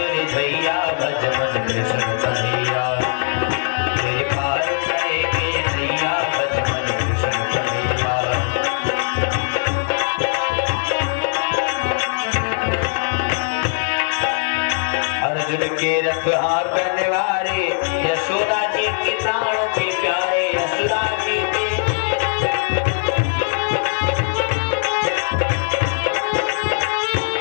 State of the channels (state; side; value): silent; right; 66 dB below the other